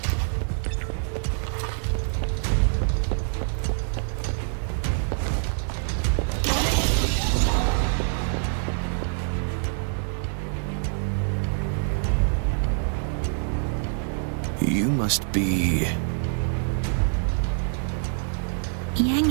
You must be... Yang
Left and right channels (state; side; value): silent; left; 61 dB below the other